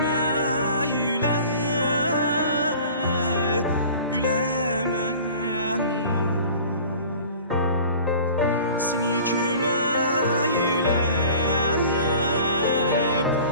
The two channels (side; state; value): both; inverted; correlation -0.44